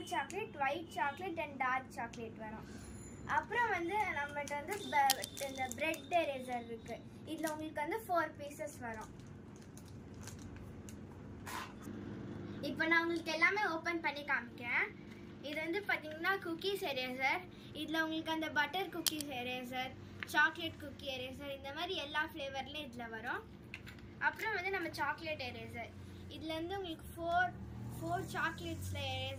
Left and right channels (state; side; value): identical; both; correlation 1.00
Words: chocolate, white chocolate and dark chocolate வரும். அப்புறம் வந்து நம்மகிட்ட வந்து இந்த பிரெட் எரேசர் இருக்குது. இதில் உங்களுக்கு வந்து 4 பீசஸ் வரும். இப்போ நான் உங்களுக்கு எல்லாமே ஓப்பன் பண்ணி காமிக்கிறேன். இது வந்து பார்த்தீங்கன்னா குக்கீஸ் எரேசர். இதில் உங்களுக்கு அந்த butter cookies eraser, chocolate cookie eraser, இந்த மாதிரி எல்லா ஃப்ளேவர்லேயும் இதில் வரும். அப்புறம் வந்து நம்ம சாக்லேட் எரேசர். இதில் வந்து உங்களுக்கு ஃபோர் சாக்லேட்ஸில்